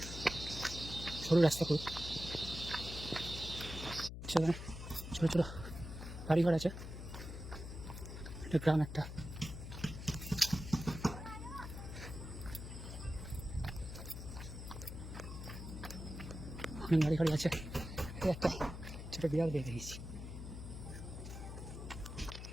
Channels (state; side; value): noise; left; hum, 8 dB below the sound